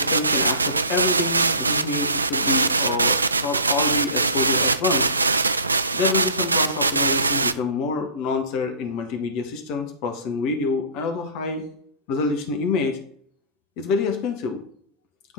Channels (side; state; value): both; inverted; correlation -0.42